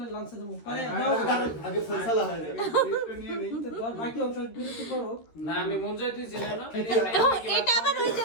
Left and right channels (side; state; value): right; late; 13 ms